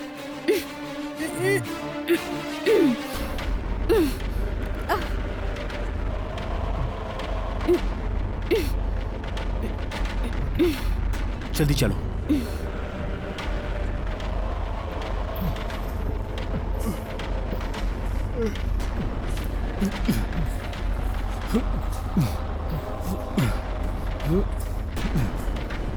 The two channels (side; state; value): both; identical; correlation 1.00